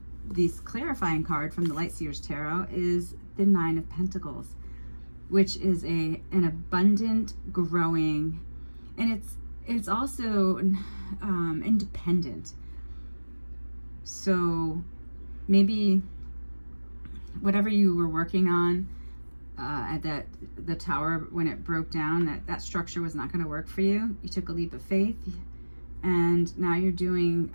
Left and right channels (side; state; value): both; inverted; correlation -1.00